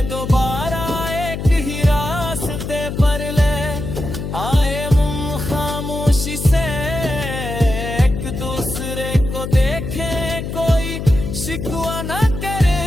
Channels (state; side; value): noise; left; hum, 5 dB below the sound